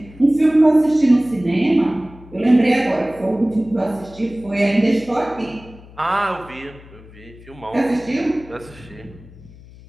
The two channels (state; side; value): noise; left; hum, 21 dB below the sound